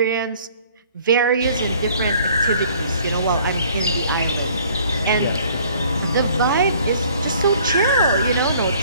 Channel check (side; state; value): both; inverted; correlation -0.56